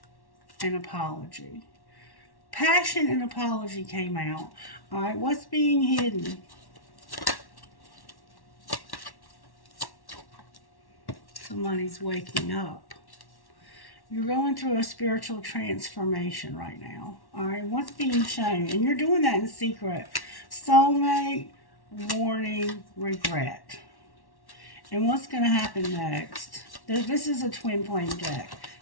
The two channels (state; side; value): late; right; 1.1 ms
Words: and apology. Passion and apology came out. All right, what's being hidden? Somebody's waking up. You're going through a spiritual transformation right now. All right, what's being shown? And you're doing that in secret. Soulmate, warning, regret. And what's going to happen next? This is a twin flame deck.